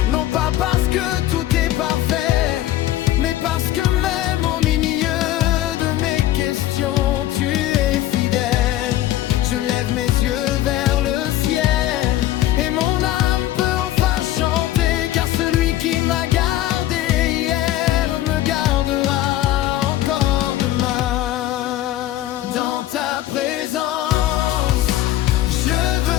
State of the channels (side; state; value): right; quieter; 14.1 dB